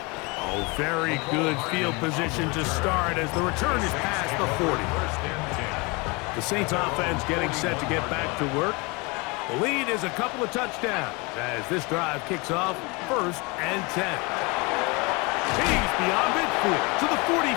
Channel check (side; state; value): right; quieter; 27.6 dB